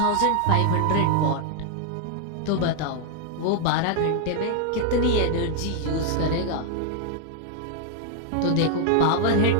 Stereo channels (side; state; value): both; different; correlation 0.00